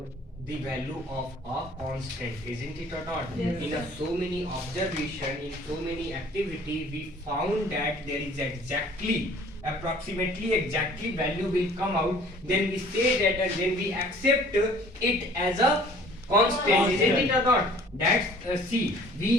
value of a constant, isn't it or not? Yes. In so many observation, in so many activity, we found that there is approximately exactly value will come out. Then we say that and then we accept it as a constant, isn't it or not? That's see,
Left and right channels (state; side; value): normal; both; correlation 0.52